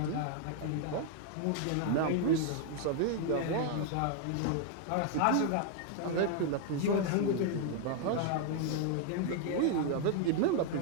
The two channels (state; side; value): different; both; correlation 0.00